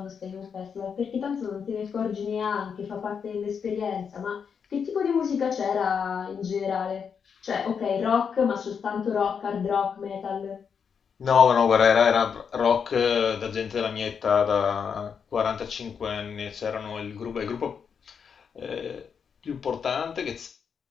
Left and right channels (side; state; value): right; quieter; 6.7 dB